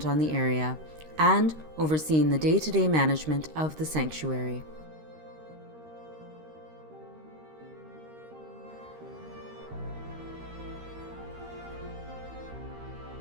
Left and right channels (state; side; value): late; left; 13 ms